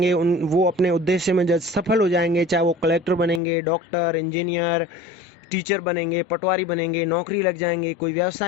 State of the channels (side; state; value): right; drops out; at 3.4 s